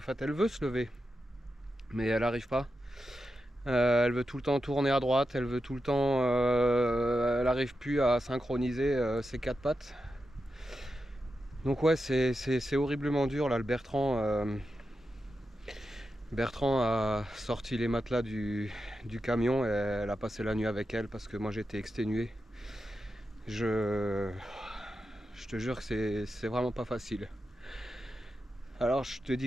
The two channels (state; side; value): normal; both; correlation 0.89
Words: fait elle veut se lever, mais elle arrive pas. Elle veut tout le temps tourner à droite, elle veut tout le temps, elle n'arrive plus à synchroniser ses 4 pattes. Donc ouais, c'est horriblement dur là. Le Bertrand a sorti les matelas du camion et elle a passé la nuit avec elle parce que moi j'étais exténué. Je te jure que c'est vraiment pas facile. Alors je te